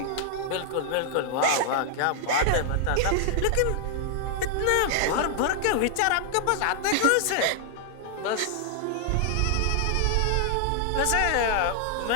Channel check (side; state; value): both; different; correlation 0.00